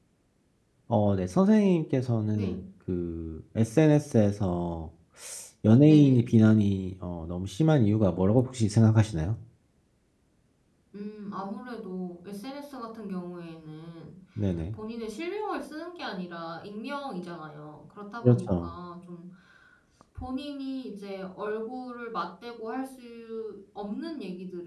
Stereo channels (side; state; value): both; identical; correlation 1.00